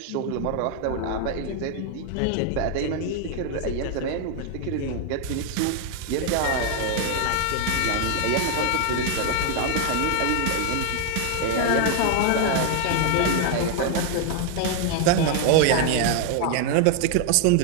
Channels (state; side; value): different; both; correlation 0.00